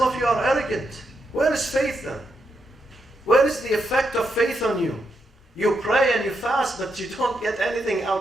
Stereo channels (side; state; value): both; normal; correlation 0.82